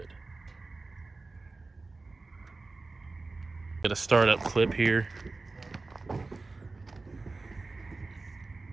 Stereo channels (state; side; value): quieter; left; 3.6 dB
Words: Get a startup clip here.